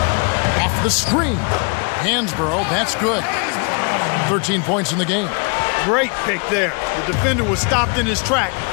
Off the screen. Hansborough, that's good. 13 points in the game. Great pick there. The defender was stopped in his track,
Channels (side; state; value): right; quieter; 35.5 dB